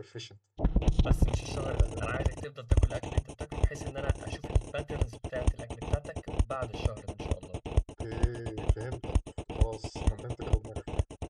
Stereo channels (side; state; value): both; identical; correlation 1.00